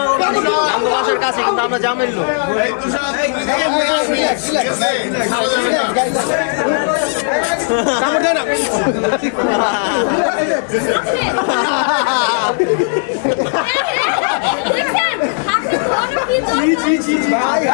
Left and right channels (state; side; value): silent; right; 61 dB below the other